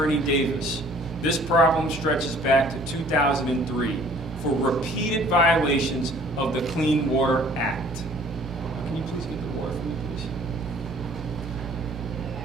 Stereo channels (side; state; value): both; normal; correlation 0.54